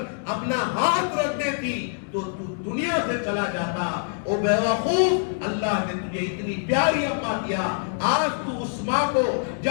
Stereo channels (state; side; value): silent; right; digital silence